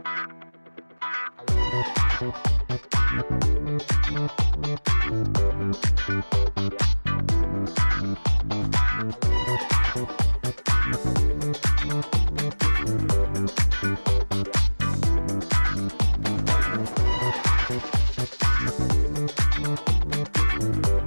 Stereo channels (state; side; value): inverted; both; correlation -1.00